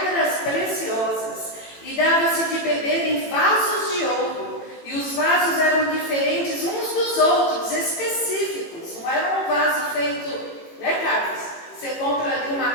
preciosas, e dava-se de beber em vasos de ouro, e os vasos eram diferentes uns dos outros, específicos, não era um vaso feito, Carlos? Você compra ali uma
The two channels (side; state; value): right; late; 18 ms